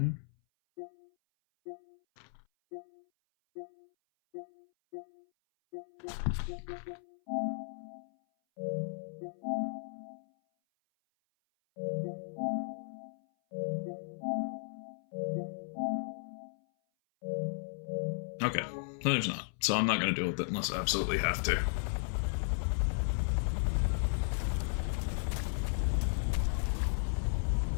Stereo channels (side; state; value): right; silent; 54 dB below the other